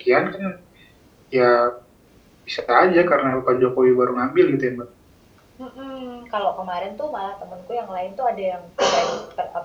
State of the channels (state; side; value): identical; both; correlation 1.00